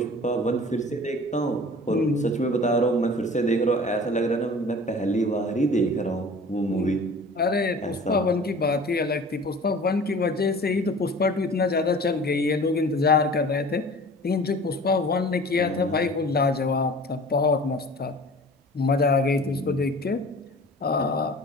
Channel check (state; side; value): normal; both; correlation 0.43